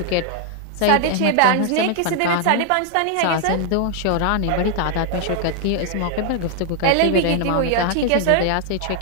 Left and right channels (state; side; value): different; both; correlation 0.00